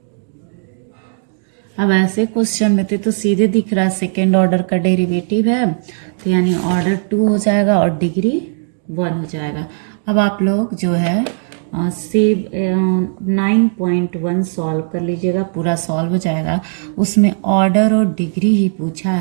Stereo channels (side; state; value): left; silent; digital silence